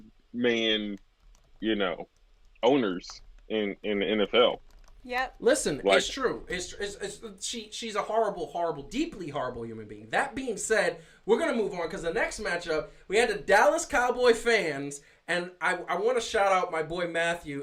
owners in the NFL. Yep. Listen, it's true. She's a horrible, deeply horrible human being. That being said, we're going to move on because the next matchup, we had the Dallas Cowboy fans, and I want to shout out my boy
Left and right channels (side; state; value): both; identical; correlation 1.00